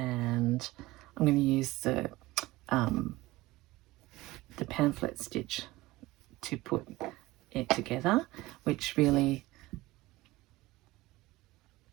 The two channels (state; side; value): quieter; left; 19.1 dB